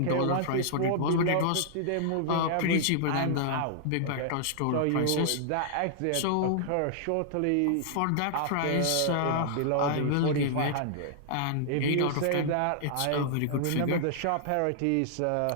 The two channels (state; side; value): different; both; correlation -0.01